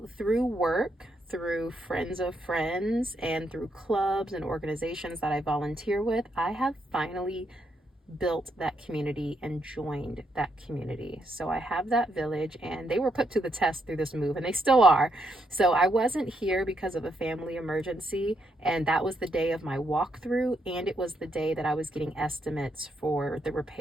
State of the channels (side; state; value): both; normal; correlation 0.78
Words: through work, through friends of friends, and through clubs and organizations that I volunteer with, I have finally built that community and joined that community. So I have that village, and they were put to the test through this move, and they still are. So I wasn't here because of a family emergency, and that was the day of my walkthrough, and it was the day that I was getting estimates for the